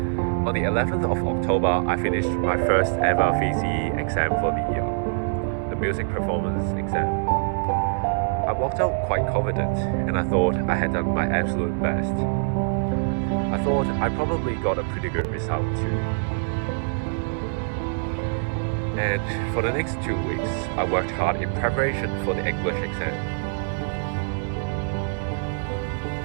On the 11th of October, I finished my first ever VCE exam for the year, the music performance exam. I walked out quite confident, and I thought I had done my absolute best. I thought I probably got a pretty good result too. And for the next 2 weeks, I worked hard in preparation for the English exam.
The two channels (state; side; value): silent; left; 62 dB below the other